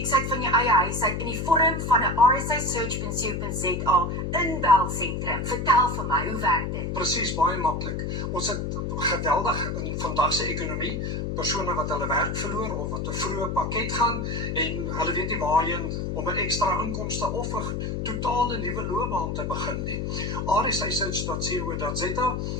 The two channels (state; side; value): noise; left; hum, 2 dB below the sound